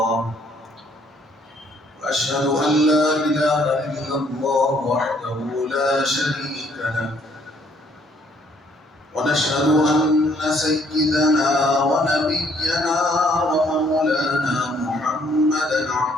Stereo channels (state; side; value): normal; both; correlation 0.65